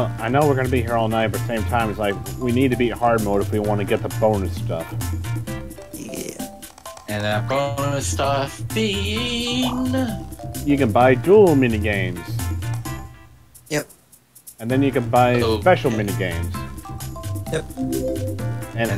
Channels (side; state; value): both; identical; correlation 1.00